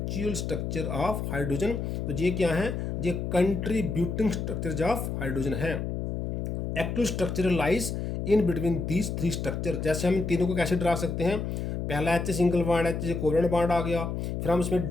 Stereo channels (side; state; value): left; noise; hum, 3 dB below the sound